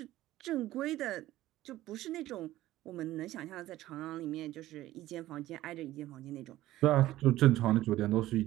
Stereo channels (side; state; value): left; quieter; 15.4 dB